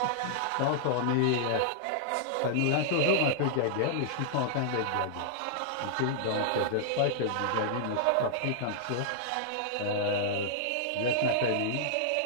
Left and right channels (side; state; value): both; different; correlation -0.01